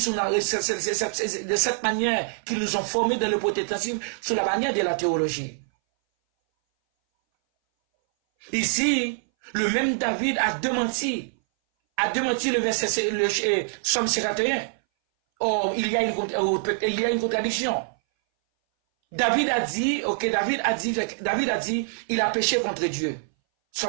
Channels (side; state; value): left; silent; 60 dB below the other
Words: cette manière qu'ils nous ont formés dans le protestantisme, sur la manière de la théologie. Ici, le même David a démenti le verset, le Psaume 51. Or, il y a une contradiction. David a dit, il a péché contre Dieu.